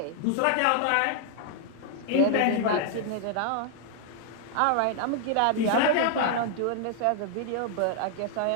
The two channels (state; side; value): different; both; correlation 0.00